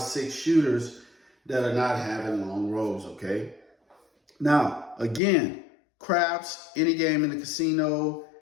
shooters that are not having long rolls, okay? Now, again, craps, any game in the casino,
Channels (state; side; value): drops out; right; at 5.2 s